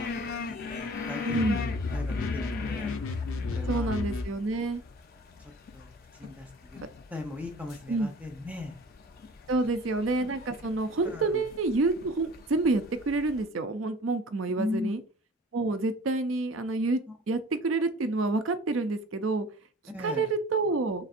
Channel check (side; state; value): both; normal; correlation 0.45